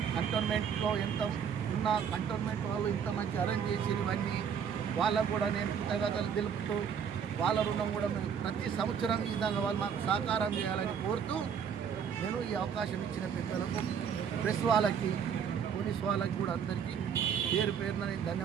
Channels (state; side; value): quieter; left; 7.5 dB